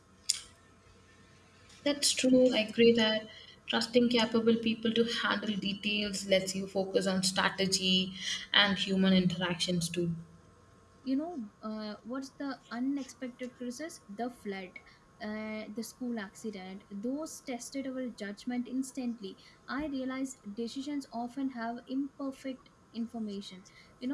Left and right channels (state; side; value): identical; both; correlation 1.00